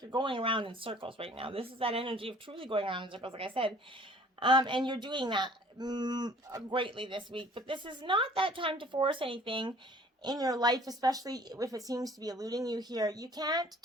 going around in circles right now. This is that energy of truly going around in circles, like I said, and you're doing that greatly this week. But this is not that time to force anything in your life, especially if it seems to be eluding you here. You can't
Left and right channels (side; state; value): both; normal; correlation 0.53